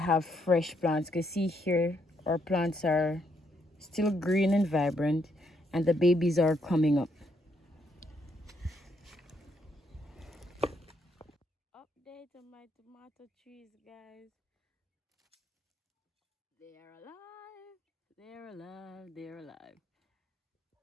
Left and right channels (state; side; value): normal; both; correlation 0.74